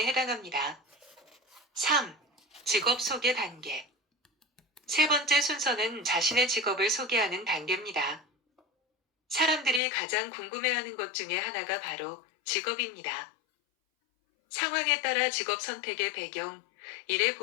해당합니다. 3. 직업 소개 단계. 세 번째 순서는 자신의 직업을 소개하는 단계입니다. 사람들이 가장 궁금해하는 것 중에 하나가 바로 직업입니다. 상황에 따라 직업 선택의 배경, 일의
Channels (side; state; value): right; drops out; at 9.8 s